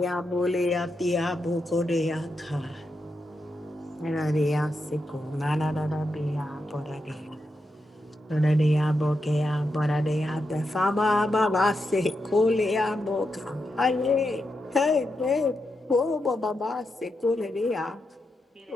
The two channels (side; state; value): both; normal; correlation 0.85